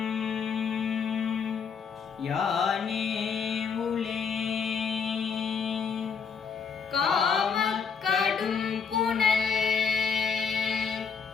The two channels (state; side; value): quieter; right; 6.2 dB